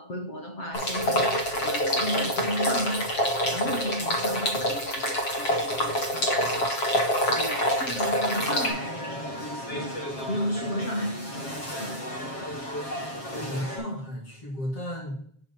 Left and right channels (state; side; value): late; right; 7.4 ms